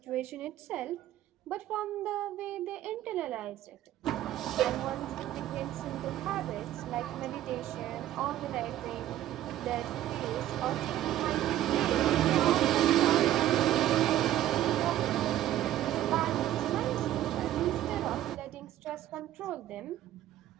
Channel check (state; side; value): quieter; left; 12.9 dB